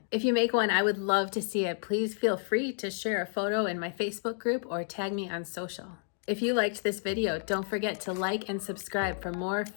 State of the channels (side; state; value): right; silent; 57 dB below the other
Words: If you make one, I would love to see it. Please feel free to share a photo in my Facebook group or tag me on social. If you liked this video, don't forget to like and subscribe for more